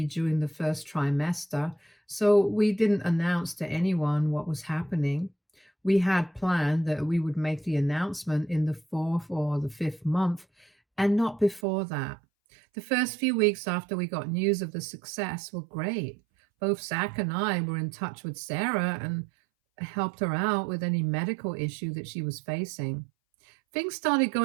during the first trimester, so we didn't announce to anyone what was happening. We had planned that we would make the announcement in the fourth or the fifth month, and not before that. The first few weeks after we got news of the success were great. Both Zach and I were in touch with Sarah and helped her out with any medical issue that she was facing. Things started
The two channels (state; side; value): drops out; left; at 11.7 s